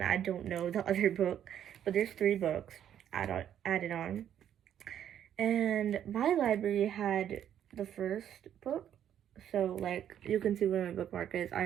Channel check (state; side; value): quieter; left; 10.0 dB